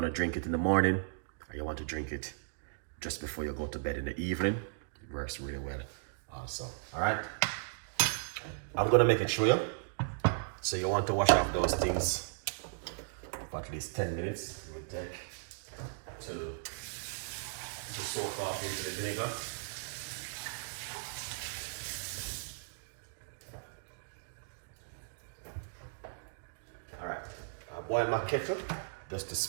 to drink it in the morning, or you want to drink it just before you go to bed in the evening. It works really well also. All right, I'm gonna make it show you. So you want to wash off those things for at least 10 minutes. It will take to soak off into the vinegar. All right, I boil my kettle just to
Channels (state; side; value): silent; left; digital silence